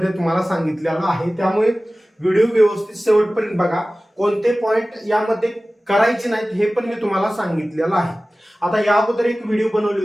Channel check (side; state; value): both; normal; correlation 0.97